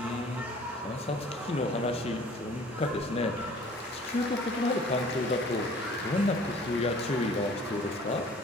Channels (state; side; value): normal; both; correlation 0.51